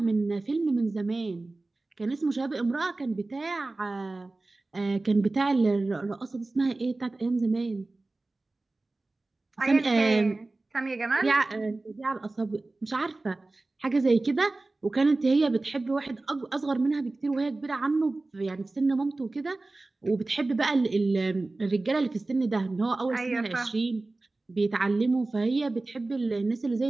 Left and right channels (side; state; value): left; quieter; 3.1 dB